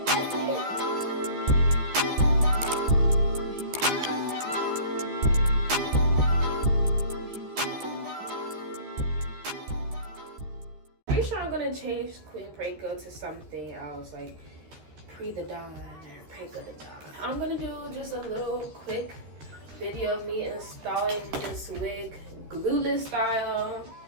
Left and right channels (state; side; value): late; left; 13 ms